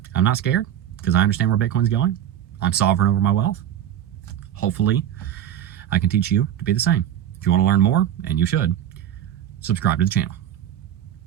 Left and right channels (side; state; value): left; quieter; 10.9 dB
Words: I'm not scared because I understand where Bitcoin's going. I'm sovereign over my wealth. Hopefully, I can teach you to be the same. If you want to learn more, and you should, subscribe to the channel.